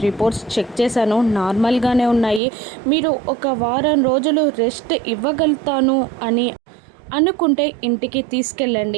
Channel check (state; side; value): drops out; left; at 2.4 s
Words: రిపోర్ట్స్ చెక్ చేశాను, నార్మల్గానే ఉన్నాయి, మీరు ఒక వారం రోజులు రెస్ట్ ఇవ్వగలుగుతాను అని అనుకుంటే ఇంటికి